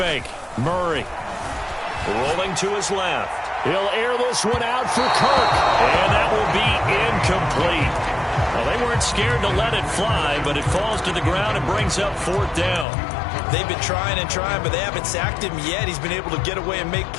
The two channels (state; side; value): drops out; right; at 12.9 s